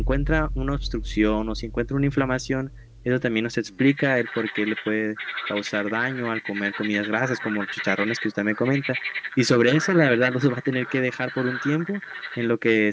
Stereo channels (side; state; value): both; identical; correlation 1.00